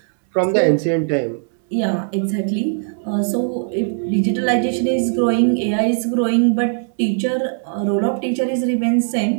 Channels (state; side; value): silent; left; 64 dB below the other